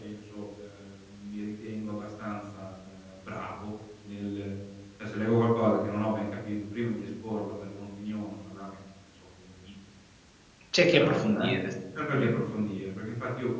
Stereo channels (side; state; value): both; identical; correlation 1.00